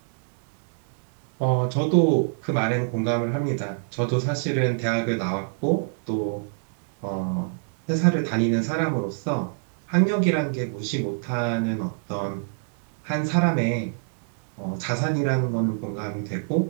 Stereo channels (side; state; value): left; silent; digital silence